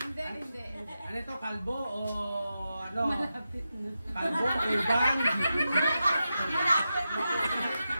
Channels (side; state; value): both; inverted; correlation -0.89